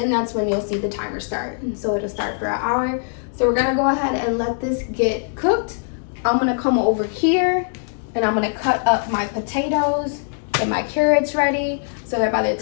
that's when you'll see the timer start. And so it'll start for 1 hour. So we're gonna go ahead and let this get cooked. I'm gonna come over here and I'm gonna cut up my potatoes, get my carrots ready, so that by the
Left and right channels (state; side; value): silent; right; digital silence